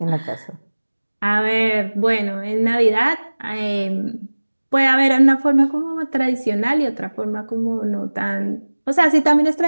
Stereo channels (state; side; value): inverted; both; correlation -1.00